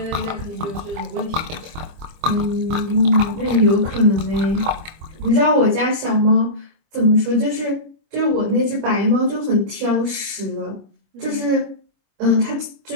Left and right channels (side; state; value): left; late; 25 ms